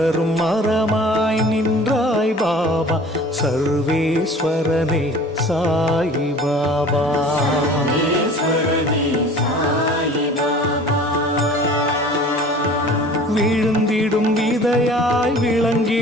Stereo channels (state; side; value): normal; both; correlation 0.45